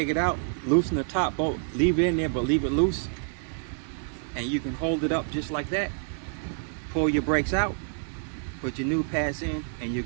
it out, loosen the top bolt, leave it in there but leave it loose, and you can hold it up just like that. Pull your brakes out, put your new pads in, and you're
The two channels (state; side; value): silent; left; 60 dB below the other